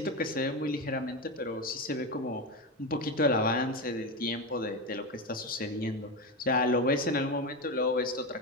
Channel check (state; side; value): normal; both; correlation 0.16